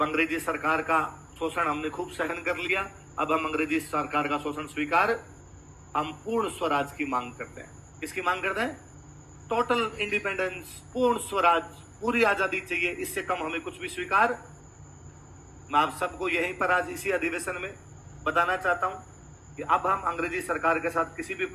अंग्रेजी सरकार का शोषण हमने खूब सहन कर लिया। अब हम अंग्रेजी सरकार का शोषण स्वीकार, हम पूर्ण स्वराज की मांग करते हैं। किसकी मांग करते हैं? टोटल इंडिपेंडेंस, पूर्ण स्वराज, पूरी आजादी चाहिए। इससे कम हमें कुछ भी स्वीकार। मैं आप सबको यहीं पर आज इसी अधिवेशन में बताना चाहता हूं कि अब हम अंग्रेजी सरकार के साथ किसी भी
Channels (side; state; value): both; identical; correlation 1.00